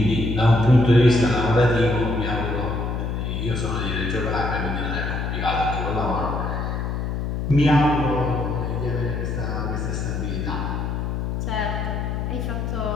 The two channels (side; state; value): left; noise; hum, 2 dB below the sound